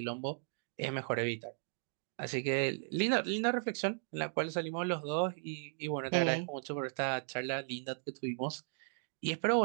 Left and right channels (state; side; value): silent; left; digital silence